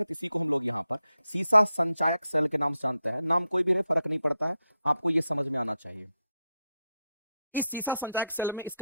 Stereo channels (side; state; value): both; inverted; correlation -0.85